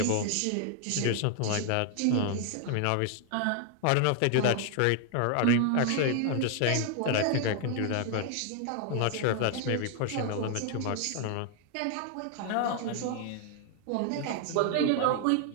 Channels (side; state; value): both; different; correlation 0.00